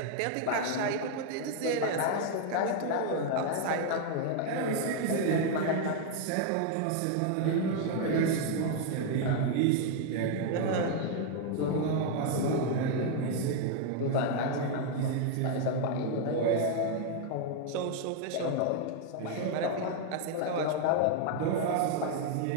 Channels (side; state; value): both; different; correlation 0.00